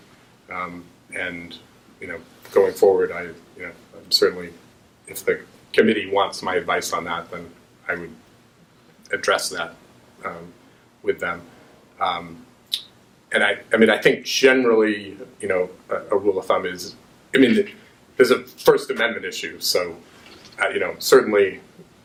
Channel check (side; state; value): both; identical; correlation 1.00